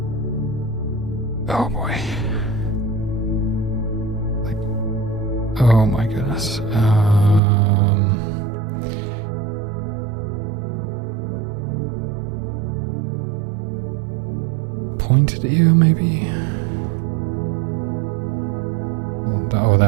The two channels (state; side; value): drops out; left; at 7.4 s